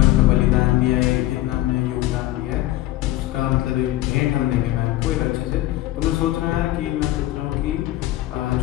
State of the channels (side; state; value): right; quieter; 15.8 dB